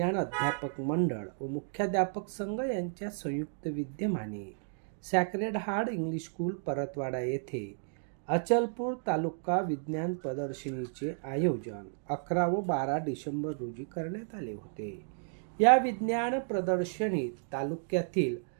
अध्यापक मंडळ व मुख्याध्यापक संघ यांच्या संयुक्त विद्यमाने sacred heart English school Paratwada येथे अचलपूर तालुका विज्ञान प्रदर्शनीचे आयोजन 11 व 12 डिसेंबर रोजी करण्यात आले होते। या विज्ञान प्रदर्शनीत तालुक्यातील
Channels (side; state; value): left; silent; digital silence